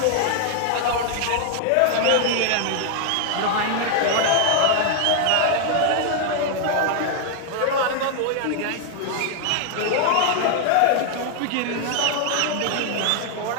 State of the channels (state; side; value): different; both; correlation 0.00